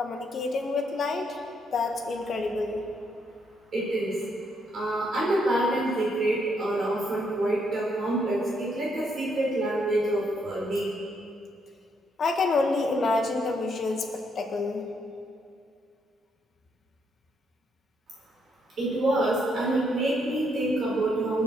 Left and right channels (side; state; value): both; normal; correlation 0.74